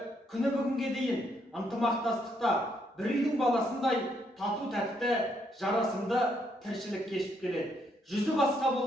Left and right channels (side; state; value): both; normal; correlation 0.74